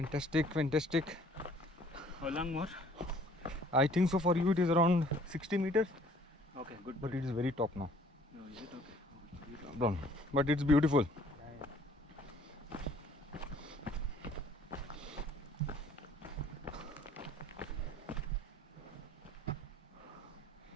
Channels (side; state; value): both; normal; correlation 0.56